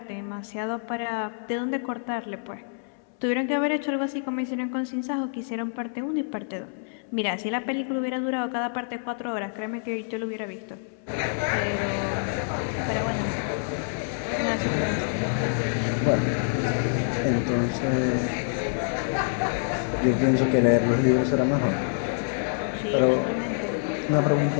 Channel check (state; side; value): silent; right; 60 dB below the other